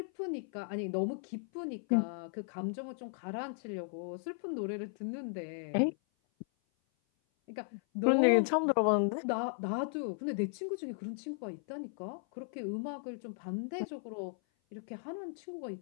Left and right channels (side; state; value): right; silent; 54 dB below the other